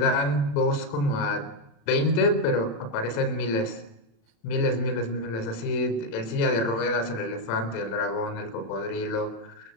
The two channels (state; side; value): late; right; 35 ms